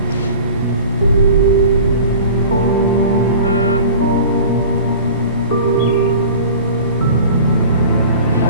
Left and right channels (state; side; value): inverted; both; correlation -0.41